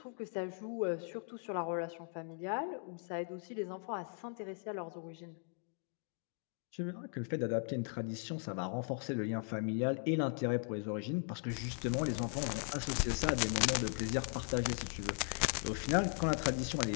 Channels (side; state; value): right; silent; 52 dB below the other